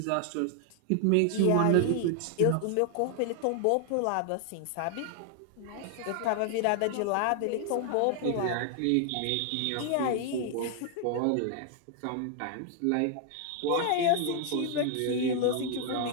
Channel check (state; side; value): different; both; correlation 0.00